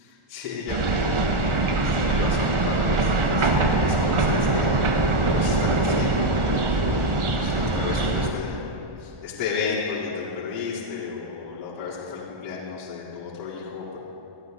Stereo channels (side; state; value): left; late; 1.4 ms